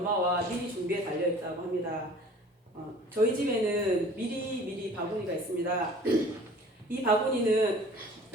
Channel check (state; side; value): normal; both; correlation 0.47